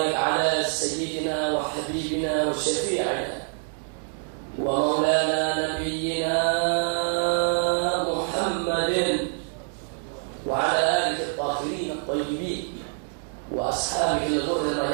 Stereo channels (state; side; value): silent; left; 61 dB below the other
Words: ala sayyidina wa habibina wa syafi'ina wa maulana nabiyyina Muhammadin wa ala alihi at-tahirin at-tayyibin wa ashabihi al-ghurri